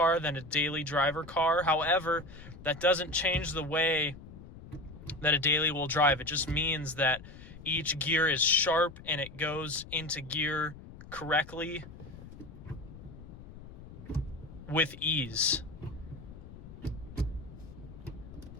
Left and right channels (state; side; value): noise; left; rumble, 16 dB below the sound